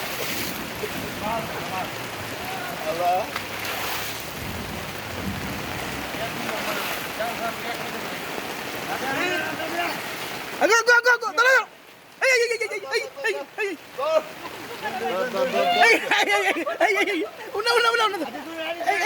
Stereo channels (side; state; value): both; identical; correlation 1.00